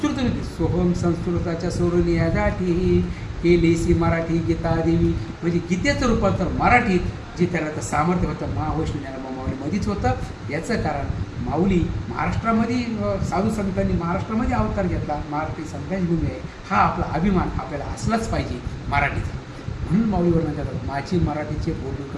होती, सोहम संस्कृताच्या सोडून या जाती केलीसी मराठी गीता देवी, म्हणजे गीतेचं रूपांतर मराठीत जे त्याला तर सामर्थ्य होतं महावैष्णव ज्ञानोबा माऊलीमध्येच होतं. याचं कारण माऊली महाराष्ट्रामध्ये साधू संतांनी महाराष्ट्रामध्ये अवतार घेतला, मराठी संतांची भूमी आहे, हा आपला अभिमान आपल्याला असलाच पाहिजे मराठीचा. म्हणून माऊली वर्णन करतात माझी मराठीचे बोलून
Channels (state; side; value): identical; both; correlation 1.00